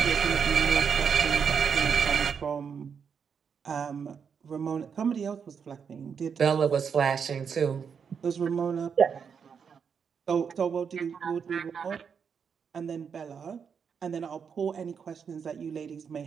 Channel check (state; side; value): quieter; left; 6.7 dB